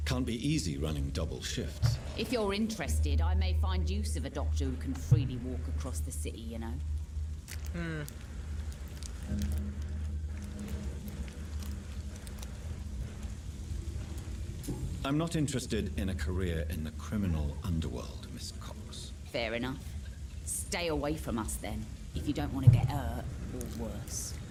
Can't be easy running double shifts. If you're interested, I may find use of a doctor who can freely walk across the city, you know? I'm not interested in a career in the criminal underworld, Miss Cox. Fair enough. Stay away from us then, if you don't want to get hurt, or worse.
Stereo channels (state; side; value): identical; both; correlation 1.00